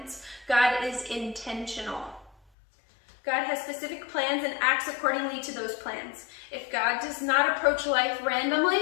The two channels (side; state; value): right; drops out; at 2.4 s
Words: God is intentional. God has specific plans and acts accordingly to those plans. If God does not approach life